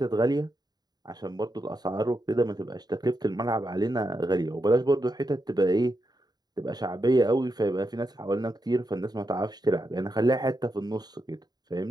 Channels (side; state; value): left; late; 0.20 ms